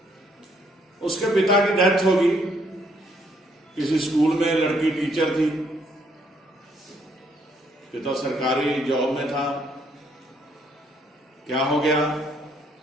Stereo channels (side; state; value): both; normal; correlation 0.69